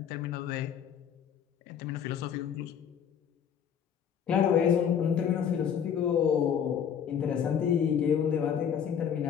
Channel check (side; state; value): right; quieter; 8.2 dB